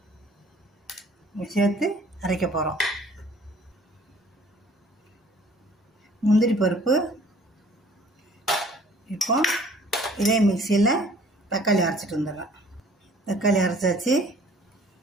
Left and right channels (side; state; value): both; normal; correlation 0.53